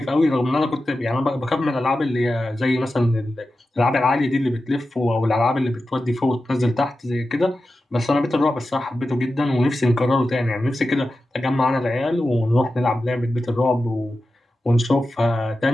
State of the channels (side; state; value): both; normal; correlation 0.92